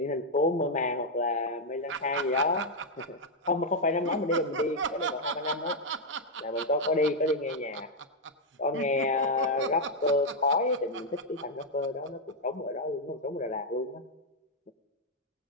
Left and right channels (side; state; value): both; normal; correlation -0.02